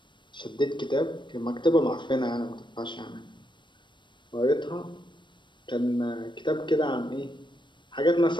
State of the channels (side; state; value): right; late; 0.22 ms